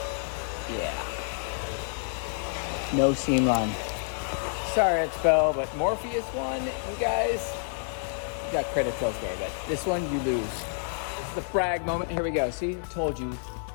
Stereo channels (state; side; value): silent; right; digital silence